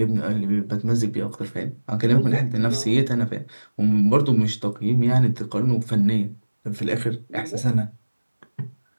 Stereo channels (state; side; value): inverted; both; correlation -1.00